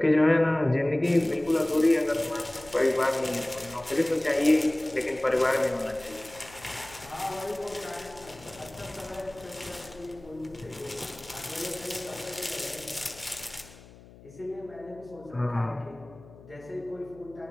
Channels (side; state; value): left; noise; hum, 21 dB below the sound